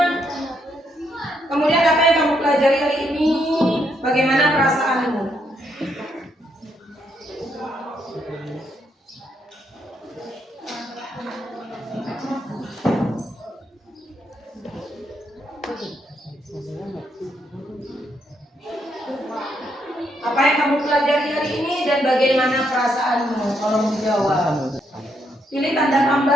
Kemudian apa yang kamu pelajari hari ini? Bagaimana perasaanmu? Apa yang kamu pelajari hari ini dan bagaimana perasaanmu? Tolong menjawab. Pilih tanda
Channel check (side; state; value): both; normal; correlation 0.76